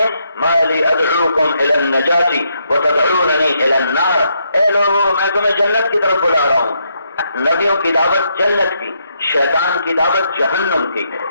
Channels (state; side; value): inverted; both; correlation -0.77